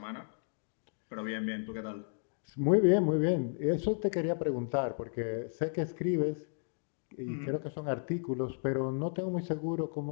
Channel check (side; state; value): right; silent; digital silence